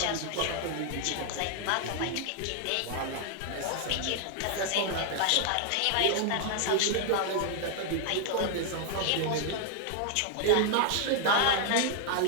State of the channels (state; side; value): different; both; correlation 0.00